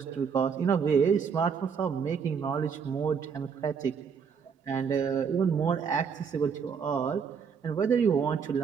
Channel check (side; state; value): left; quieter; 6.4 dB